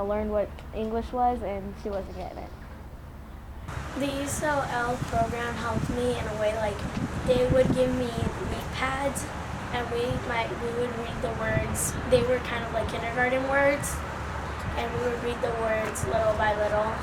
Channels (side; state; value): both; identical; correlation 1.00